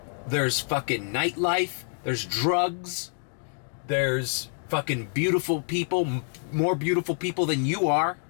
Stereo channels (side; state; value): right; silent; 60 dB below the other